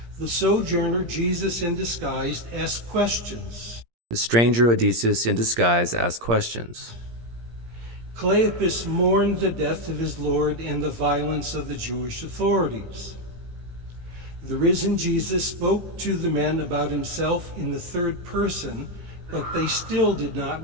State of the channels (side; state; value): left; late; 17 ms